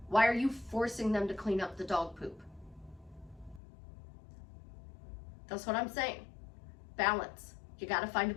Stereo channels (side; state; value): right; drops out; at 3.6 s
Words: Why are you forcing them to clean up the dog poop? That's what I'm saying. Balance. You got to find a